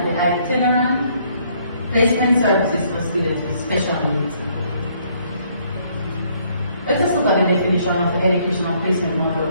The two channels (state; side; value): inverted; both; correlation -0.66